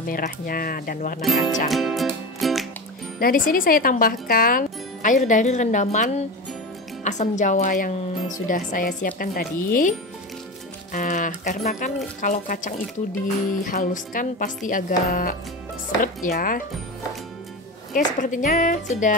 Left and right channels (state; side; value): normal; both; correlation 0.25